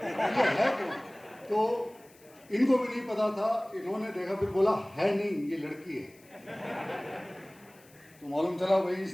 है कौन? तो इनको भी नहीं पता था, इन्होंने देखा फिर बोला है नहीं ये लड़की है। तो मालूम चला भाई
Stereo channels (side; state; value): left; noise; hiss, 27 dB below the sound